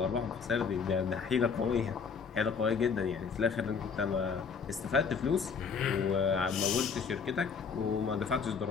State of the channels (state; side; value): quieter; right; 5.9 dB